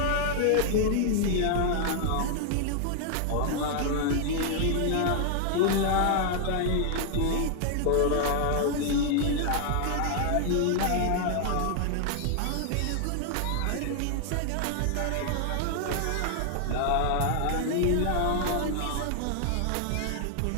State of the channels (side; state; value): both; different; correlation 0.00